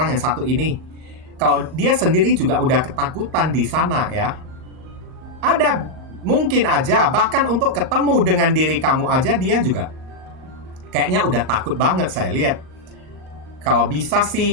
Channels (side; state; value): left; late; 38 ms